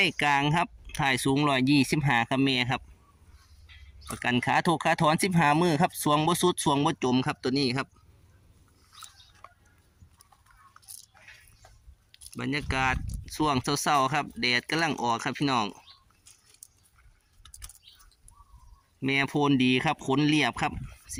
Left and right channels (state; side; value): identical; both; correlation 1.00